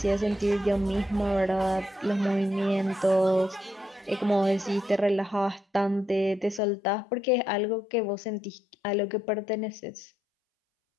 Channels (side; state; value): right; drops out; at 6.6 s